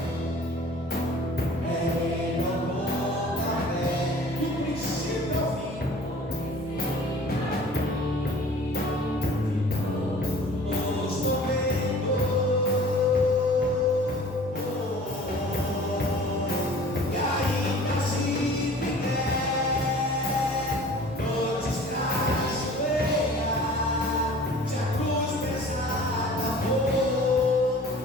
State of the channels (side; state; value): both; normal; correlation 0.46